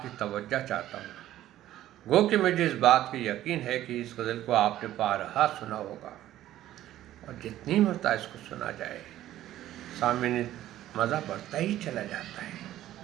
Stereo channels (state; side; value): quieter; left; 13.5 dB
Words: کی توجہ چاہتا ہوں۔ گو کہ مجھے اس بات کی یقین ہے کہ اس غزل کو آپ نے بارہا سنا ہوگا، اور جتنی مرتبہ اس کو سنا جائے سامعین مزہ بڑھتا ہی چلا جاتا ہے۔